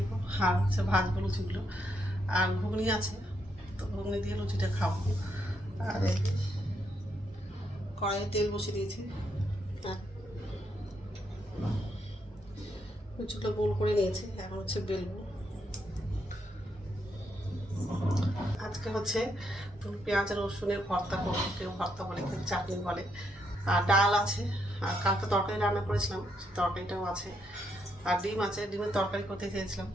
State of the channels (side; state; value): both; normal; correlation 0.78